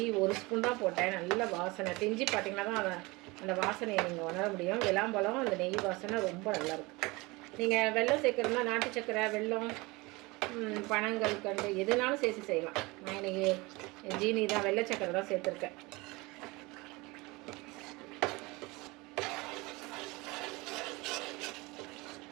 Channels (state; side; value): quieter; left; 23.8 dB